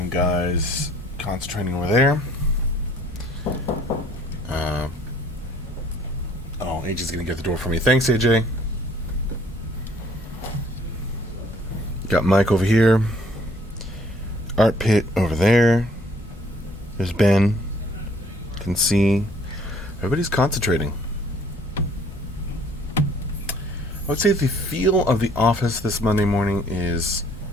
guys concentrating over there. Oh, AJ's gonna get the door for me. Thanks, AJ. Got Mike over here. Art Pit over there. There's Ben. Can see. Everybody's concentrating. I would say the feel of the office this Monday morning is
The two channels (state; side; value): normal; both; correlation 0.59